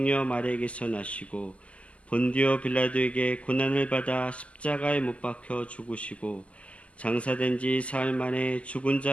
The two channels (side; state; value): right; late; 0.061 ms